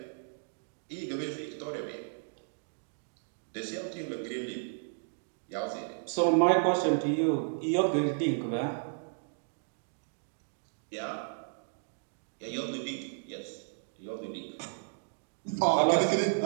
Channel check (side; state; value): left; silent; digital silence